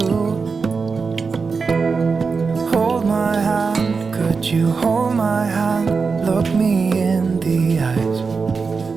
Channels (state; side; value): quieter; left; 4.9 dB